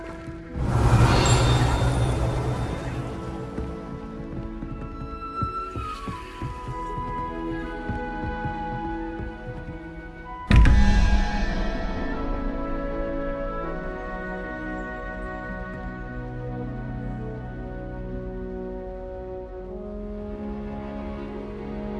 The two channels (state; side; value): identical; both; correlation 1.00